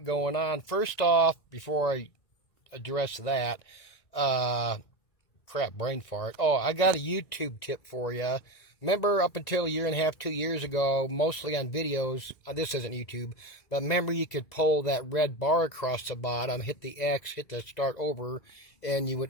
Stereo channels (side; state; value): right; late; 2.0 ms